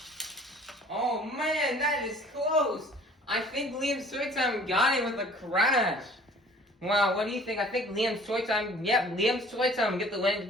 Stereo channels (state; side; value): normal; both; correlation 0.51